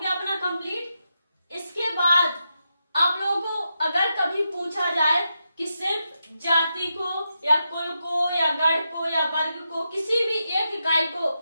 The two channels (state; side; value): inverted; both; correlation -0.86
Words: अपना कंप्लीट। इसके बाद आप लोगों को अगर कभी पूछा जाए कि सिर्फ जाति को या कुल को या गण को या वर्ग को किसी भी एक इकाई को